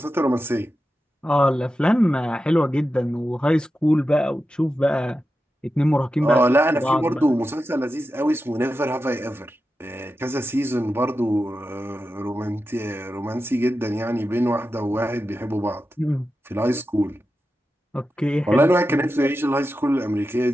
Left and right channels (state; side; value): normal; both; correlation 0.91